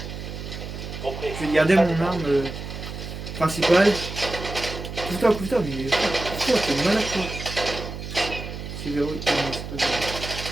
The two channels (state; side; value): noise; right; hum, 8 dB below the sound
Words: Compris. Je vais garder mon arme principale. Couvre-toi, mais couvre-toi, t'es malade toi. C'est verrouillé. Ah non, c'est pas verrouillé.